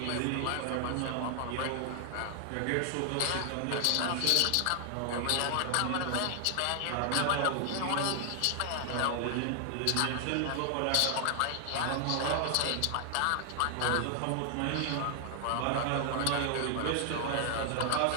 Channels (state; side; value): different; both; correlation 0.00